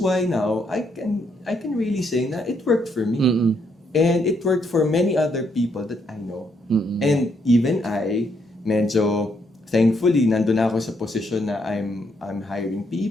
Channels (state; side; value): normal; both; correlation 0.74